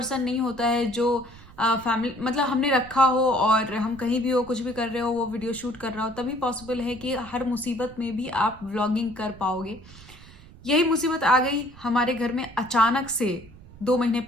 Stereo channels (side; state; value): right; noise; rumble, 20 dB below the sound